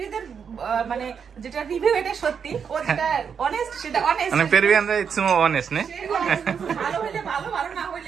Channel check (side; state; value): left; quieter; 6.8 dB